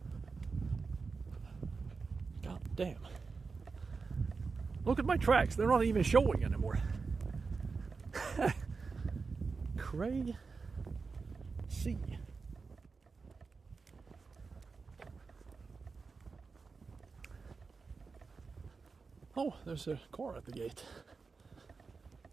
God damn. Look at my tracks, they're not even showing anymore. Crazy. Oh, there's a car at the gate.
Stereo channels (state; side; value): quieter; left; 4.6 dB